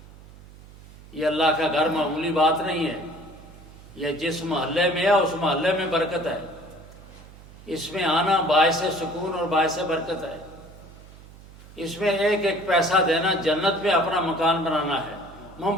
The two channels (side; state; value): right; noise; hum, 20 dB below the sound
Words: یہ اللہ کا گھر معمولی بات نہیں ہے، یہ جس محلے میں ہے اس محلے میں برکت ہے، اس میں آنا باعث سکون اور باعث برکت ہے۔ اس میں ایک ایک پیسہ دینا جنت میں اپنا مکان بنانا ہے۔ من